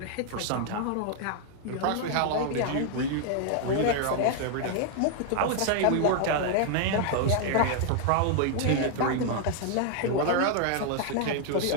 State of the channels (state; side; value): different; both; correlation 0.00